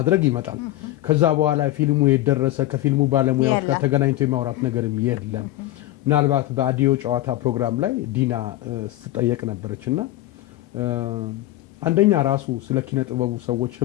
ይመጣል ከዛ በኋላ ፊልሙ የደረሰ ከፊልሙ ባለሙያዎች ጋር ተገናኝቶ የማውራት ነገርም የለም ምናልባት በአዲዮ ጨዋታ ፕሮግራም ላይ ዲና ስትጠየቅ ነበረችና አንደኛ ራሱ ስለ ኪነ ጥበቡ ሰዎች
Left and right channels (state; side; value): quieter; right; 15.7 dB